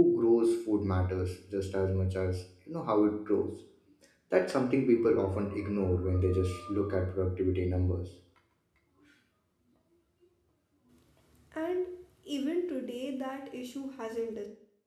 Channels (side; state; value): both; identical; correlation 1.00